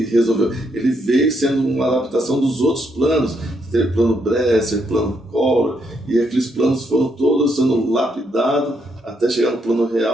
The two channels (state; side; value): normal; both; correlation 0.76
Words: resolveu. Ele veio sendo uma adaptação dos outros planos. Teve plano Bresser, plano Collor, e aqueles planos foram todos sendo lapidados até chegar no plano